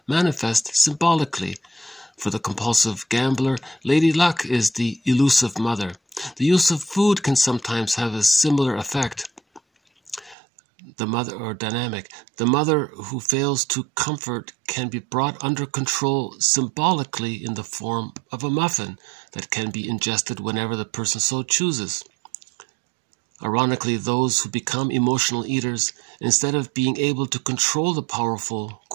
manifest symbolically. For the compulsive gambler, Lady Luck is the elusive mother. The use of food can sometimes have a similar effect. The mother who fails to comfort can be brought under control symbolically in the form of a muffin that can be ingested whenever the person so chooses. Ironically, those who become emotional eaters, instead of being able to control the powerful,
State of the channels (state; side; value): drops out; left; at 10.4 s